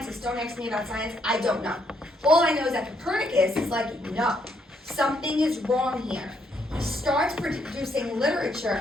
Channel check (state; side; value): normal; both; correlation 0.73